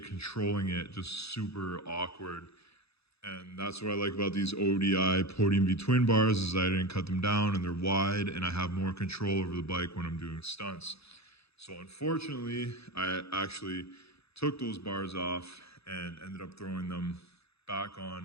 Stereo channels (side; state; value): right; late; 0.78 ms